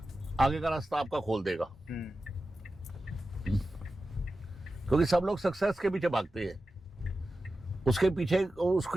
आगे का रास्ता आपका खोल देगा। क्योंकि सब लोग सक्सेस के पीछे भागते हैं, उसके पीछे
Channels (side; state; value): both; normal; correlation 0.93